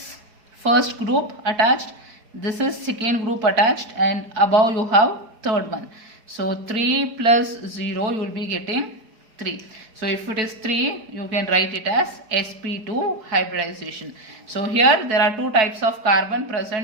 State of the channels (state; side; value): late; left; 4.8 ms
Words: first group attached, this is second group attached, and above you have third one. So 3 plus 0 you will be getting 3. So if it is 3, you can write it as sp2 hybridization. So here there are two types of carbon